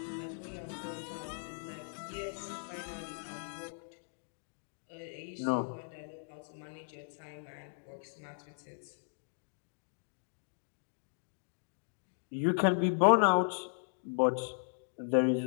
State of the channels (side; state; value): right; silent; digital silence